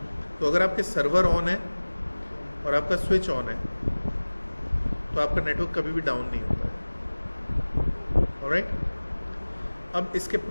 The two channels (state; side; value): inverted; both; correlation -1.00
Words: तो अगर आपके सर्वर ऑन है और आपका स्विच ऑन है तो आपका नेटवर्क कभी भी डाउन नहीं होता है। ऑलराइट, अब इसके